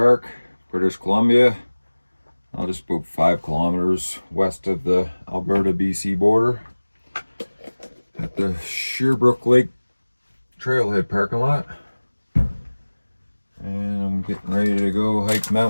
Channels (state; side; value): inverted; both; correlation -1.00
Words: British Columbia. Just about 5 kilometers west of the Alberta-BC border at the Shearbrook Lake Trailhead parking lot. And I'm getting ready to go hike